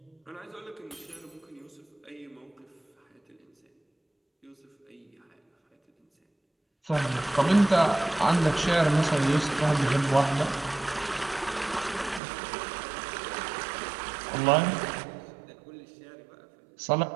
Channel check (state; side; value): drops out; left; at 12.2 s